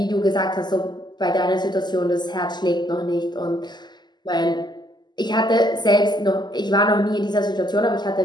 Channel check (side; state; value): right; late; 0.21 ms